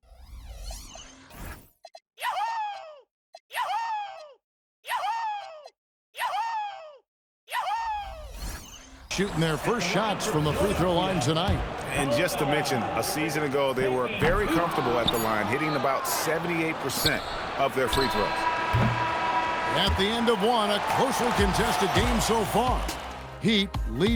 Shooting their first shots from the free throw line tonight. And just to mention, a season ago, they were very comfortable at the line, hitting about 78% of their free throws. At the end of one, a closely contested game so far. Heat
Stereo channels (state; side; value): identical; both; correlation 1.00